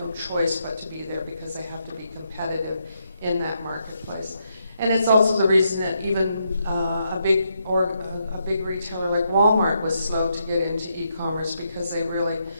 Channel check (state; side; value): inverted; both; correlation -0.80